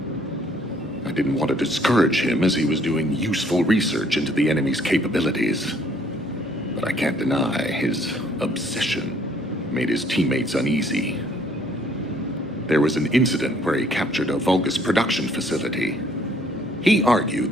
I didn't want to discourage him as he was doing useful research into the enemy's capabilities. But I can't deny his obsession made his teammates uneasy. There was an incident where he captured a Vulgus production facility. He argued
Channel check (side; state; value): both; normal; correlation 0.62